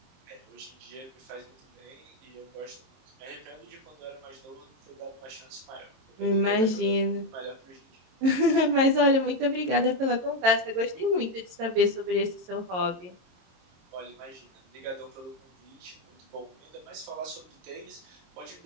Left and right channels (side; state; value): left; late; 22 ms